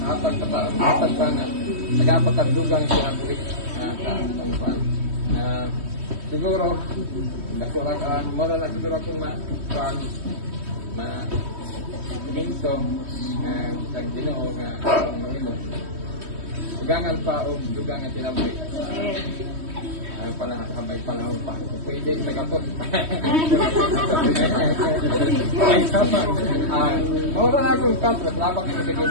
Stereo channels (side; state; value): left; late; 3.1 ms